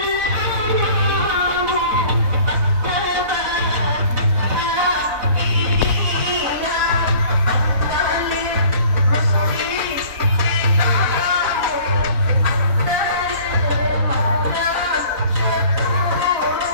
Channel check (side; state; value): left; late; 4.0 ms